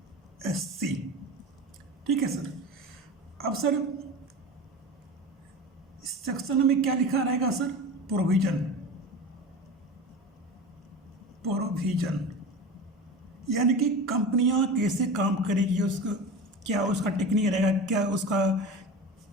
ठीक है सर। अब सर इस सेक्शन में क्या लिखा रहेगा सर? प्रोविजन, यानी कि कंपनियां कैसे काम करेगी, उसका क्या उसका टेक्निक रहेगा, क्या उसका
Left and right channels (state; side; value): normal; both; correlation 0.31